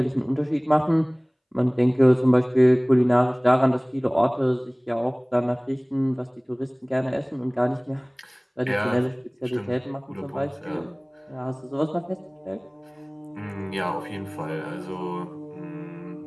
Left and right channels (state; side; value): identical; both; correlation 1.00